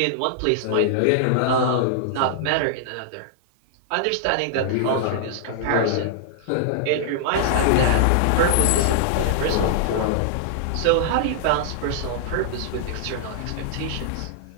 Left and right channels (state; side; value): different; both; correlation -0.01